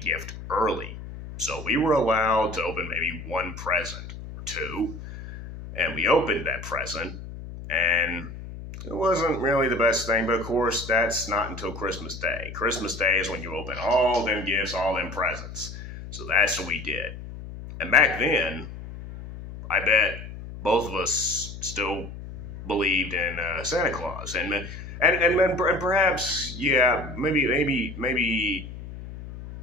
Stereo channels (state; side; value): noise; left; hum, 11 dB below the sound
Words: early. So we were allowed to open maybe one present or two, and we opened that present, and it wasn't really the best thing, but of course, that's not until Christmas Day. Christmas Day is when you open all them gifts, all them presents. So that's what we did. And back then, I bet both of us still believed in Santa Claus. And perhaps, yeah, maybe